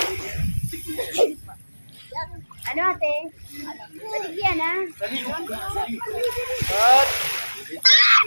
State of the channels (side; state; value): both; inverted; correlation -1.00